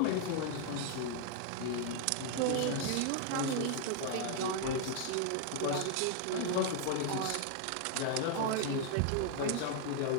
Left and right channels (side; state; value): both; different; correlation 0.00